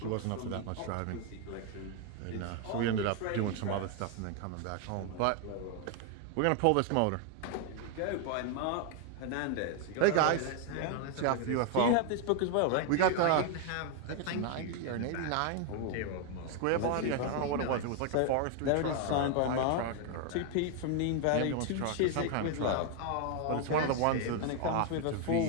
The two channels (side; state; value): both; different; correlation 0.01